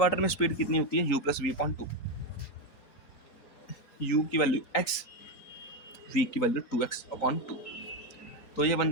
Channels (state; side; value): late; right; 3.9 ms